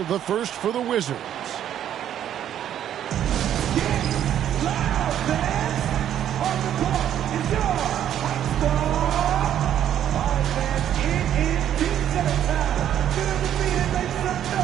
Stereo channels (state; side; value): quieter; left; 10.5 dB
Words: the first for the Wizards.